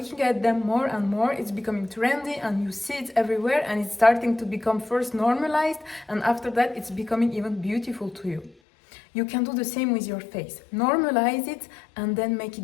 at them more and more, it's becoming trendy and you see it everywhere, and it's starting to become first normalized, and after that it's becoming even beautiful to you. You can do the same with your face. Normalize it and then make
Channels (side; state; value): right; drops out; at 8.6 s